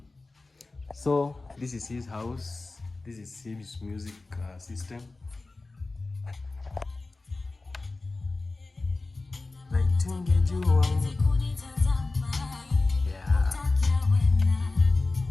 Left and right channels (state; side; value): quieter; right; 3.4 dB